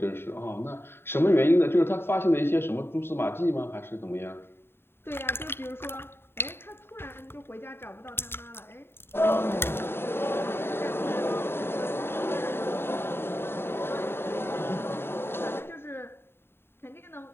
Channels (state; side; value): late; right; 0.11 ms